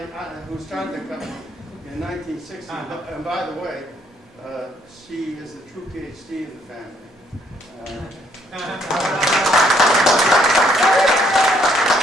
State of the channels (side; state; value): both; normal; correlation 0.67